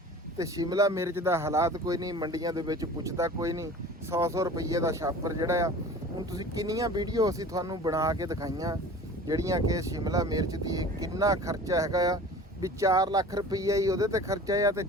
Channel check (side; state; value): both; normal; correlation 0.41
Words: ਤੇ ਸ਼ਿਮਲਾ ਮਿਰਚ ਦਾ ਹਾਲਾਤ ਕੋਈ ਨਹੀਂ, ਮੰਡੀਆਂ ਦੇ ਵਿੱਚ ਪੁੱਛਦਾ ਕੋਈ ਨਹੀਂ। 100 ਰੁਪਏ ਦਾ ਛਾਪਰ ਜਿਹੜਾ ਆ, ਹੁਣ ਤੁਸੀਂ ਕਿੰਨੀਆਂ ਵੀਡੀਓ ਅਸੀਂ ਤੁਹਾਨੂੰ ਬਣਾ ਕੇ ਦਿਖਾਈਆਂ ਜਿਹੜੀਆਂ ਕਿ ਸ਼ਿਮਲਾ ਮਿਰਚ ਦੀ ਕਿੰਨਾ ਖਰਚਾ ਹੈਗਾ ਆ, ਵੀ 4 ਲੱਖ ਰੁਪਈਆ ਹੀ ਉਹਦੇ ਤੇ ਖਰਚਾ ਆ ਤੇ